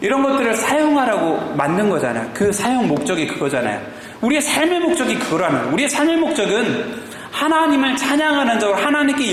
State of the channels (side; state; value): both; identical; correlation 1.00